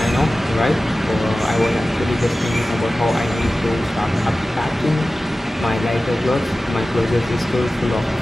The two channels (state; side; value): normal; both; correlation 0.96